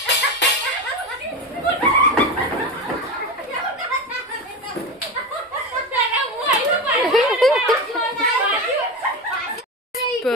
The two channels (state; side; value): normal; both; correlation 0.21